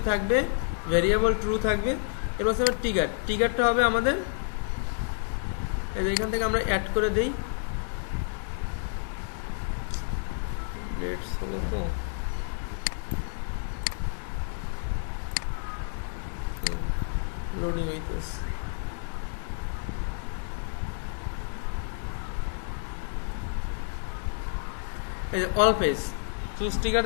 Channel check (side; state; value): right; silent; digital silence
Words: থাকবে, ভেরিয়েবল ট্রু থাকবে, এরপর হচ্ছে ট্রিগারটা হবে আমাদের এই যে এখান থেকে আমরা অ্যাড করে দেই লেটস হলো তো লোডিং হইতেছে এই যে অল পেজ চুজ ট্রিগার